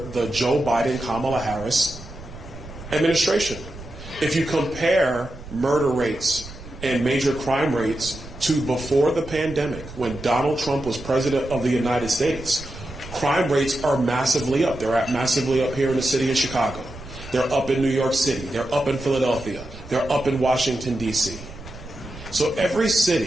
the Joe Biden, Kamala Harris administration. If you compare murder rates and major crime rates to before the pandemic, when Donald Trump was president of the United States, crime rates are massively up. They're massively up here in the city of Chicago. They're up in New York City. They're up in Philadelphia. They're up in Washington, D.C. So every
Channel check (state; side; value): noise; right; rumble, 15 dB below the sound